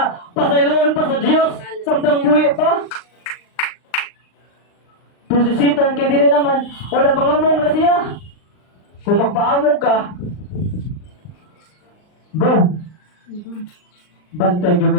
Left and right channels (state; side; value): late; right; 39 ms